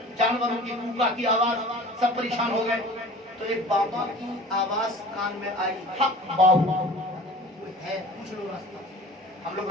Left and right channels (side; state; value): both; normal; correlation 0.42